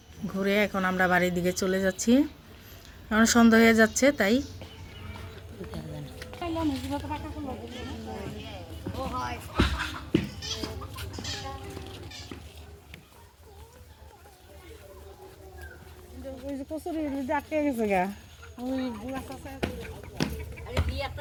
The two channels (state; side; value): identical; both; correlation 1.00